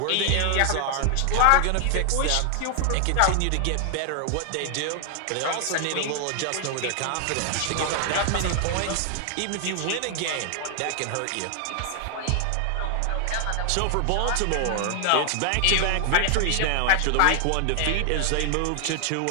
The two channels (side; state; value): both; different; correlation 0.00